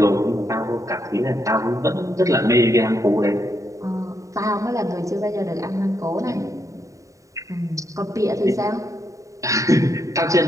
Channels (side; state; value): left; late; 0.16 ms